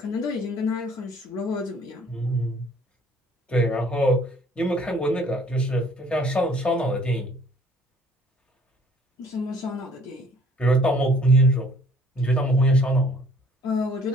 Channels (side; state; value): both; normal; correlation 0.57